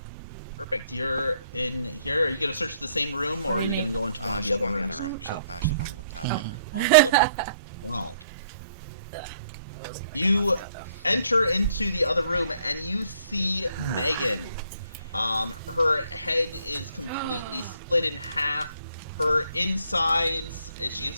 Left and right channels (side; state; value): both; inverted; correlation -0.66